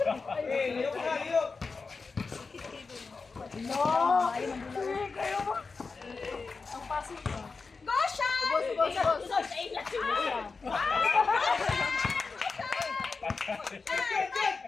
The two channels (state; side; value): quieter; right; 4.4 dB